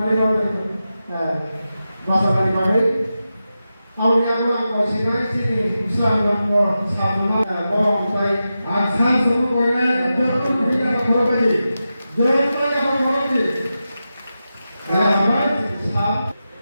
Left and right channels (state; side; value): inverted; both; correlation -0.91